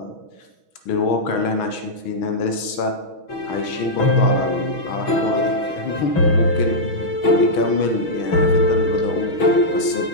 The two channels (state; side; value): late; right; 6.2 ms